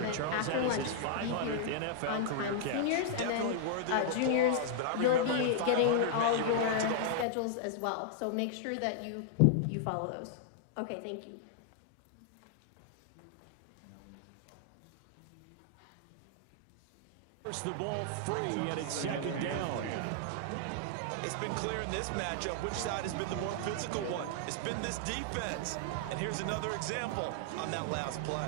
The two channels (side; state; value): both; different; correlation -0.01